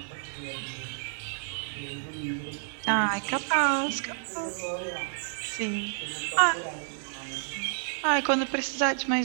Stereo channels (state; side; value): silent; left; 58 dB below the other